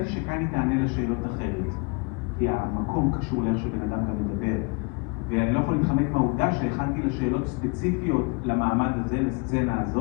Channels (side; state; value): right; quieter; 30.3 dB